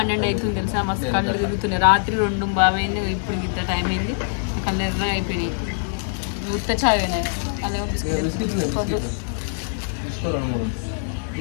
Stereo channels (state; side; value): silent; right; digital silence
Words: అవుతుంది తెలుసా, మస్తు కళ్ళు తిరుగుతున్నాయి. రాత్రి 2 బాబైంది, ఇప్పుడు ఇంత టైం అయింది, కళ్ళు ఎర్ర అయిపోయినాయి. ఉత్త చాయ్ అయినాయి.